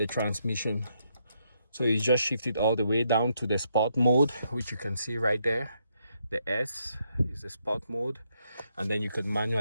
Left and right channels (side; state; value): both; inverted; correlation -0.77